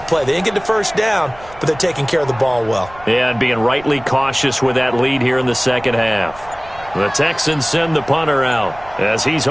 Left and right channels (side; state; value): right; noise; rumble, 21 dB below the sound